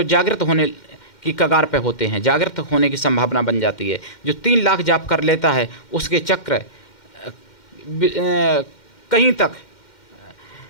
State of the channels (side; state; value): right; late; 2.1 ms